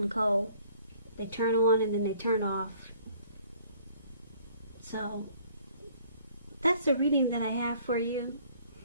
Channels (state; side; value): inverted; both; correlation -0.59